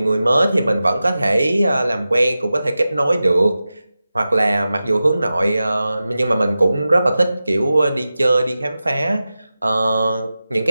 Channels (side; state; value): both; inverted; correlation -0.94